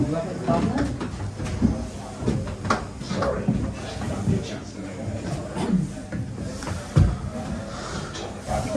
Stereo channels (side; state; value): both; identical; correlation 1.00